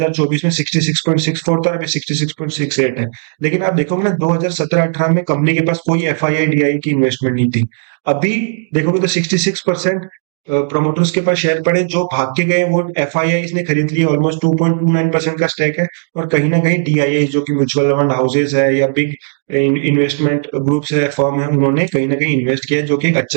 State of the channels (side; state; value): left; silent; digital silence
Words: में 66.64 था, अभी 66.68 है। लेकिन आप देखोगे ना, 2017-18 में कंपनी के पास कोई F I I D I की इन्वेस्टमेंट नहीं थी। अभी देखोगे तो 66% प्रोमोटर्स के पास शेयर पड़े, जो भाग के गए वो एफ आई आई ने खरीद लिए, ऑलमोस्ट 2.29% का स्टेक है। और कहीं ना कहीं डी आई आई, जो कि म्यूचुअल फंड हाउसेज है या बिग इन्वेस्टमेंट ग्रुप्स है, फर्म है, उन्होंने कहीं ना कहीं इन्वेस्ट किया, जो कि एक